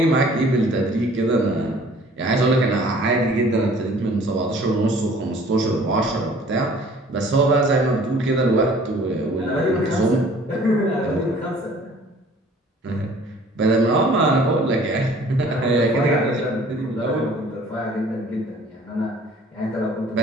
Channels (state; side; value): normal; both; correlation 0.52